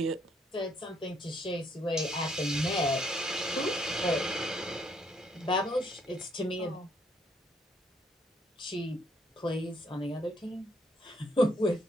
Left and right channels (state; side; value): normal; both; correlation 0.70